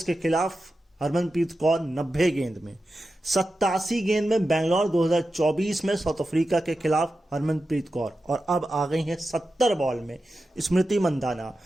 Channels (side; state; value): both; normal; correlation 0.91